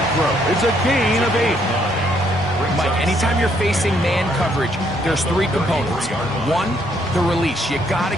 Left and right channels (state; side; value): normal; both; correlation 0.70